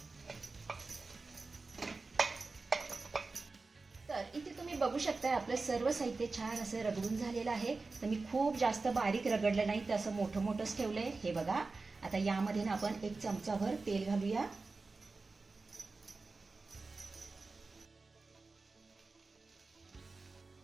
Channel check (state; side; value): quieter; left; 3.8 dB